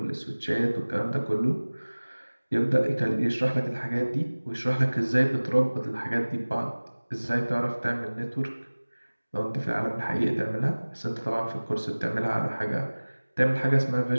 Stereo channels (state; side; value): inverted; both; correlation -1.00